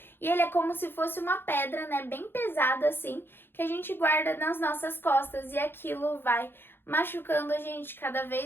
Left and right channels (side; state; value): right; late; 0.10 ms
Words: E ele é como se fosse uma pedra, né, bem pesada assim, que a gente guarda nas nossas costas e aquilo vai machucando a gente cada